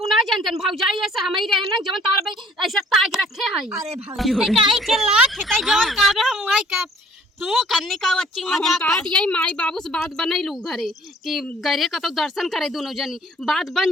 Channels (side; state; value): both; normal; correlation 0.56